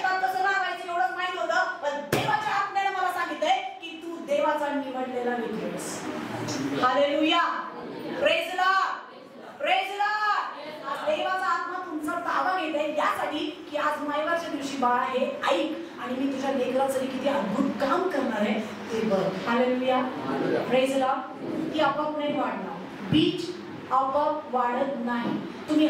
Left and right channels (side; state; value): both; identical; correlation 1.00